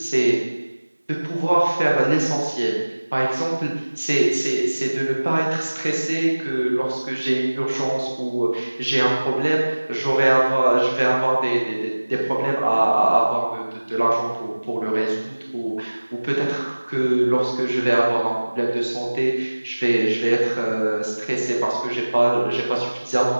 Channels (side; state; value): both; inverted; correlation -1.00